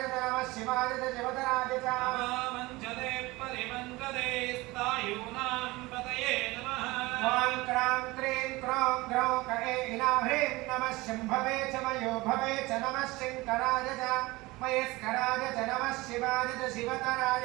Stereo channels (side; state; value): left; quieter; 21.3 dB